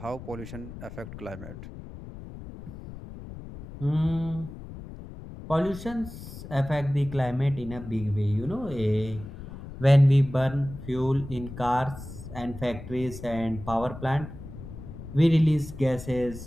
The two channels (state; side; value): noise; left; rumble, 13 dB below the sound